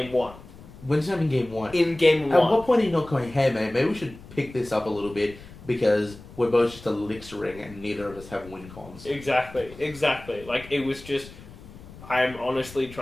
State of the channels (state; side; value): noise; left; rumble, 18 dB below the sound